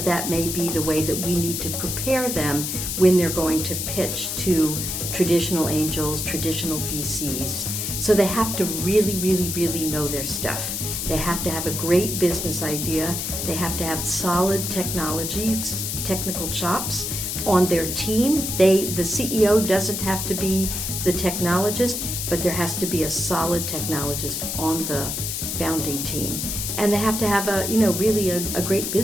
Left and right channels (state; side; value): noise; left; hiss, 3 dB below the sound